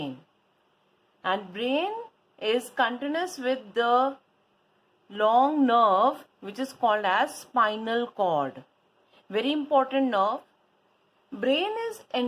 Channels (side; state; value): both; identical; correlation 1.00